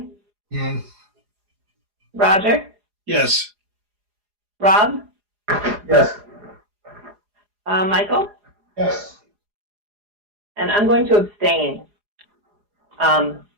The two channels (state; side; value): late; left; 4.8 ms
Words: Yes. Roger? Yes. Rob? Yes. Michael? Yes. And I'm going to abstain.